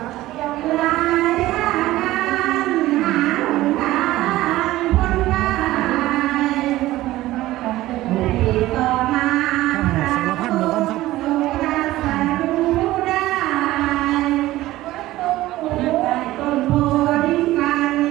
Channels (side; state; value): left; quieter; 16.4 dB